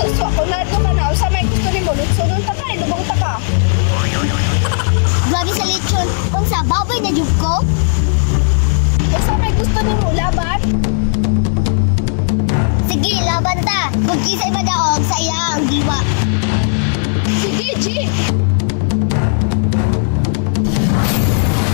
ako na ka na. Sa may gusto ni mo, lutsunon ta ka, ilubong ta ka. Grabe sa lechon. Kung sa baboy na jub ko? Sa may gusto ni mo, laban. Sige, laban ta. Kung kisay madaog sa iya ang diwa. Sige, G.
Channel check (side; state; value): right; silent; digital silence